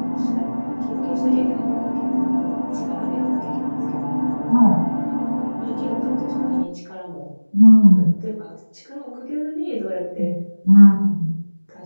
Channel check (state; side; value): inverted; both; correlation -1.00